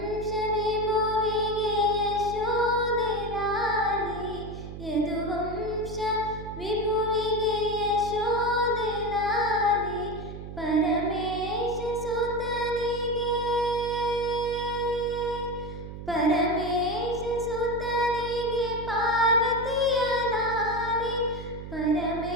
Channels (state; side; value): noise; right; hum, 10 dB below the sound